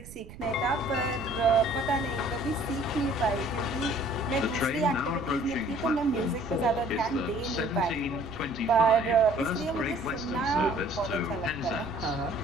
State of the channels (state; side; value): noise; right; rumble, 17 dB below the sound